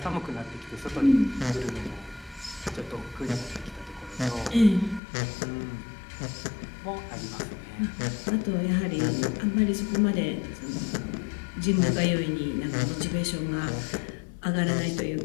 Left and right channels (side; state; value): right; drops out; at 5.0 s